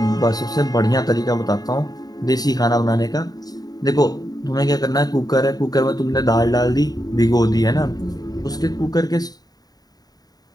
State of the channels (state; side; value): late; right; 0.19 ms